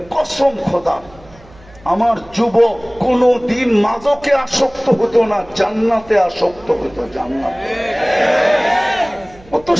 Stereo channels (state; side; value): noise; right; hum, 24 dB below the sound